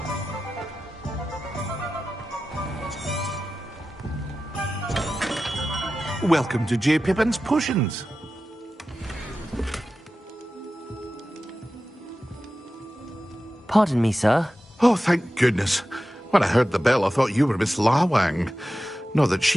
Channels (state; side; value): normal; both; correlation 0.93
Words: Welcome to J. Pippin's Potions. Pardon me, sir. Oh, thank goodness. When I heard the bell, I thought you were Miss Lawang. Not that